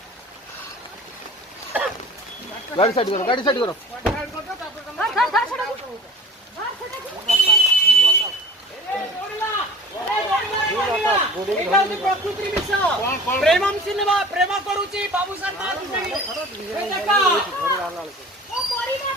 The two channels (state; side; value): normal; both; correlation 0.42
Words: गाड़ी साइड करो प्रेमम सिनेमा प्रेम करूची बाबू सर ମୋ